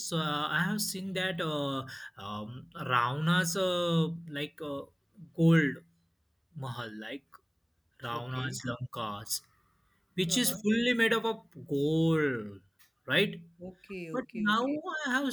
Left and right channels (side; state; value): both; identical; correlation 1.00